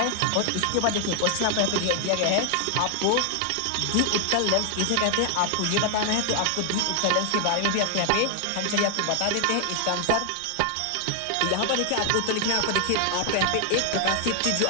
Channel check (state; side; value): different; both; correlation 0.00